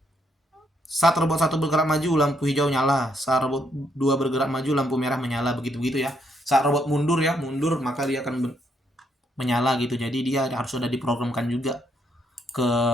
saat robot 1 bergerak maju lampu hijau nyala, saat robot 2 bergerak maju lampu merah menyala, begitu ya. Saat robot mundur maka dia akan menyala gitu. Jadi dia harus sudah diprogramkan juga ke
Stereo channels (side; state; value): both; normal; correlation 0.74